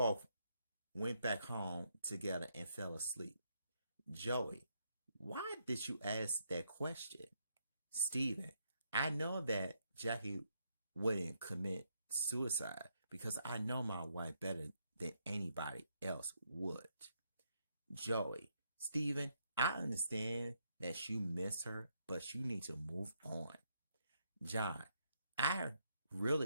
went back home together and fell asleep. Joey, why did you ask that question? Stephen, I know that Jackie wouldn't commit suicide because I know my wife better than anybody else would. Joey, Stephen, I understand that you miss her, but you need to move on. John, I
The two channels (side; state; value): both; inverted; correlation -0.76